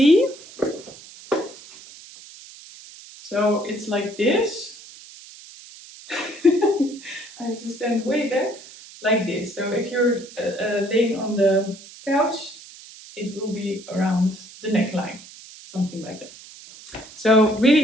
So it's like this. I have to stand way there, like this. So if you're laying on the couch, it will be around the neckline, something like that. So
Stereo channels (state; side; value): noise; right; hiss, 18 dB below the sound